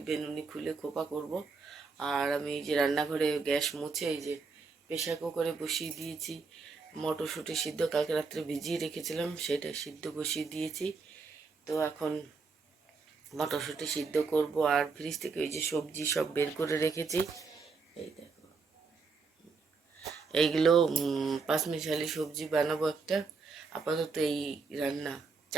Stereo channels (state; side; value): quieter; left; 4.6 dB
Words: বেনুনি খুলে খোপা করব। আর আমি এই যে রান্নাঘরে গ্যাস মুছে এই যে প্রেসার কুকারে বসিয়ে দিয়েছি মটরশুঁটি সিদ্ধ, কালকে রাত্রে ভিজিয়ে রেখেছিলাম, সেটা সিদ্ধ বসিয়ে দিয়েছি। তো এখন মটরশুঁটি সিদ্ধ করব। আর ফ্রিজ থেকে ওই যে সবজি সব বের করে রেখেছি, এই দেখো এইগুলো পাঁচমিশালি সবজি বানাবো একটা। আপাতত এই রান্না,